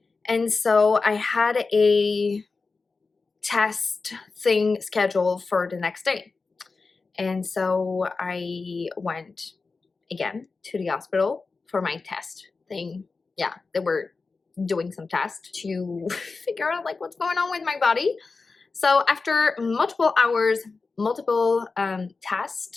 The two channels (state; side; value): quieter; right; 4.2 dB